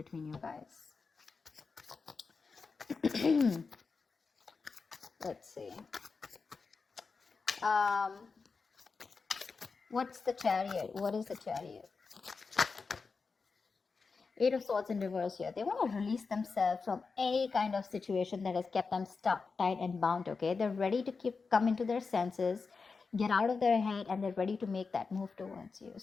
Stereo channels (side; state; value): right; quieter; 4.7 dB